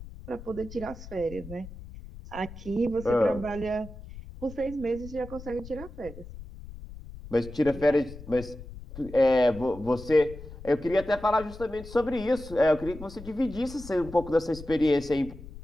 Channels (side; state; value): left; noise; rumble, 14 dB below the sound